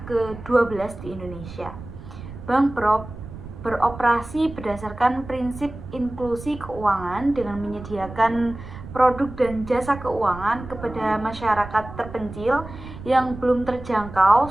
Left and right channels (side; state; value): right; noise; rumble, 13 dB below the sound